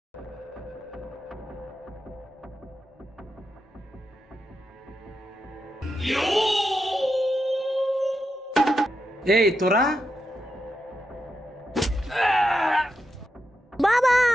এই তোরা, বাবা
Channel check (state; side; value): normal; both; correlation 0.86